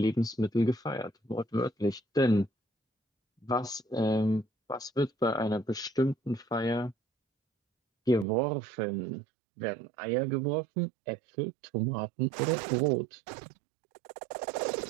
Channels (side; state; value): left; drops out; at 8.2 s